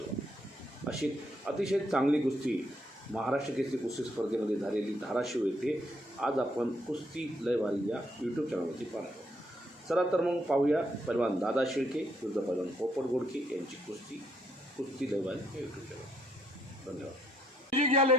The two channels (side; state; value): both; normal; correlation 0.72